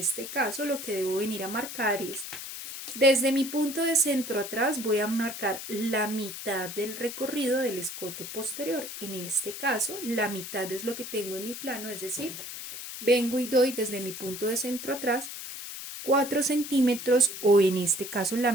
caso lo que debo venir a marcar es, desde mi punto de centro atrás voy a marcar la mitad del recorrido del escote posterior. En este caso, la mitad es lo que tengo en mi plano, es decir, vengo y doy desde mi punto de centro atrás 4 centímetros o en este caso la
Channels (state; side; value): noise; left; hiss, 9 dB below the sound